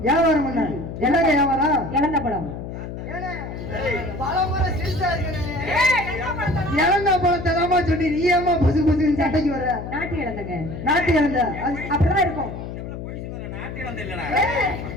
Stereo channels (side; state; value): left; noise; hum, 8 dB below the sound